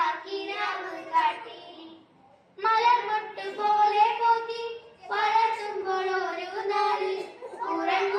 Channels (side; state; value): both; identical; correlation 1.00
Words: കാട്ടി. മലർമൊട്ട് പോലെ പോറ്റി വളർത്തുമ്പോൾ ഒരു നാളിൽ